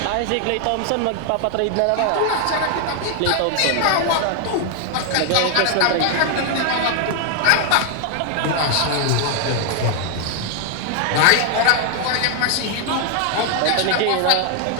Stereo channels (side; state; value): both; different; correlation 0.00